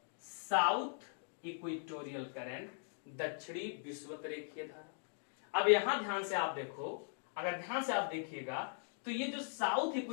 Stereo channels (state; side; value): silent; right; digital silence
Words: साउथ इक्वेटोरियल करंट, दक्षिणी विषुवत रेखीय धारा। अब यहां ध्यान से आप देखो, अगर ध्यान से आप देखिएगा तो ये जो साउथ